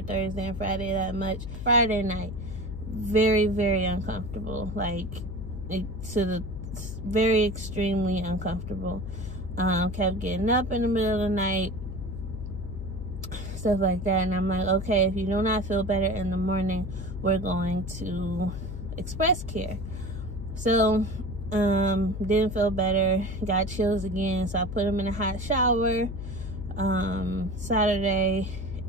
Thursday and Friday that much. Friday night, very, very uncomfortable, like very extremely uncomfortable. Kept getting up in the middle of the night, stuff like that. And I'm like, okay, if you do not feel better in the morning, we're going to express care. So didn't feel better, got chills again, so I put him in a hot shower Saturday,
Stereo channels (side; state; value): left; noise; hum, 8 dB below the sound